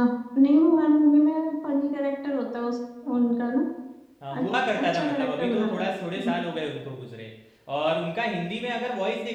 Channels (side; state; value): both; identical; correlation 1.00